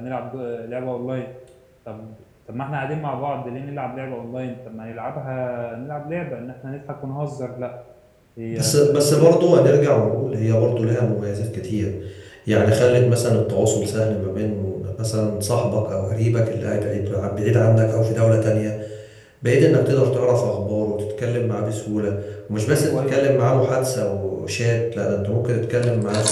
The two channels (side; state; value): both; identical; correlation 1.00